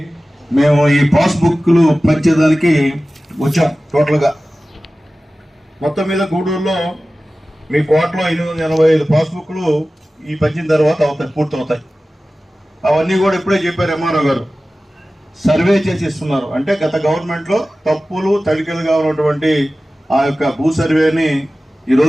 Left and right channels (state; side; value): normal; both; correlation 0.96